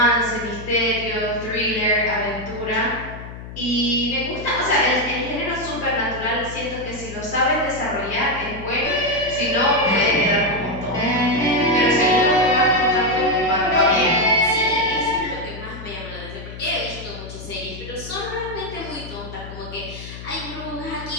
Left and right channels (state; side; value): noise; left; hum, 12 dB below the sound